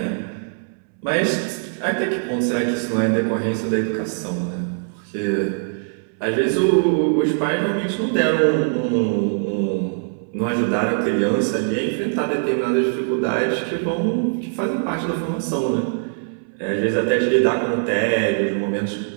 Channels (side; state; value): left; silent; 64 dB below the other